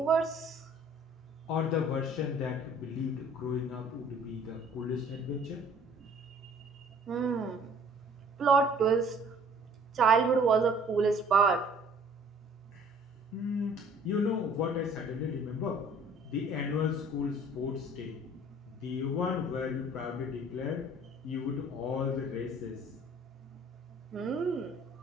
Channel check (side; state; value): both; normal; correlation 0.53